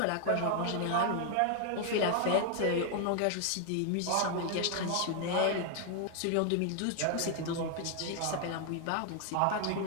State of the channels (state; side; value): different; both; correlation 0.00